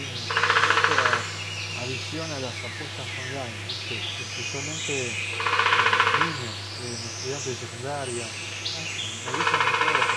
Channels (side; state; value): both; identical; correlation 1.00